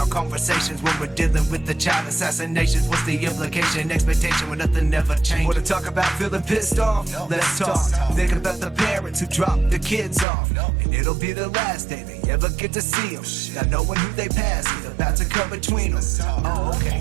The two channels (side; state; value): left; drops out; at 10.2 s